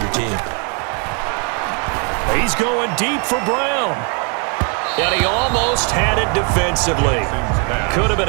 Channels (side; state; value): left; quieter; 37.9 dB